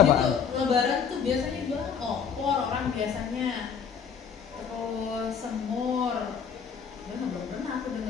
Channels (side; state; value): right; quieter; 7.0 dB